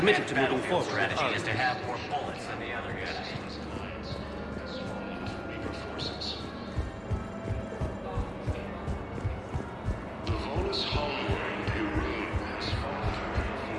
to moving battlefield forward with strategy Arya. is to have more bullets than the other guy. The Volus homeworld, Irene, has fallen to rebel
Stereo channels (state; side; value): identical; both; correlation 1.00